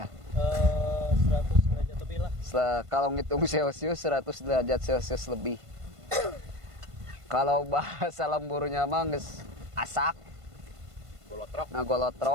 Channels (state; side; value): late; left; 1.5 ms